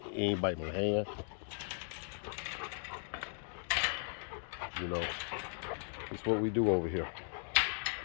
He ain't biting my hand. You know, it's what we do over here.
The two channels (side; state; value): right; silent; 53 dB below the other